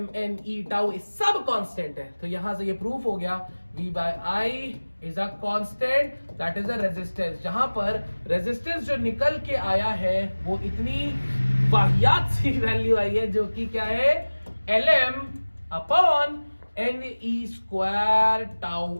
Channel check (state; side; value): inverted; both; correlation -1.00